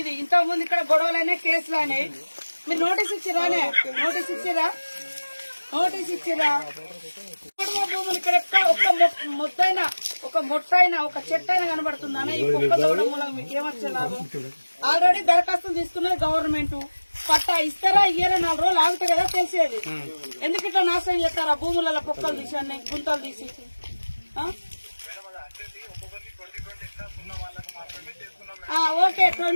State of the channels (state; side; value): inverted; both; correlation -1.00